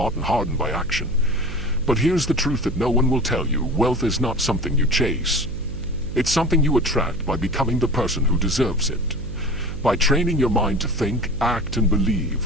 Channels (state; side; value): noise; right; hum, 9 dB below the sound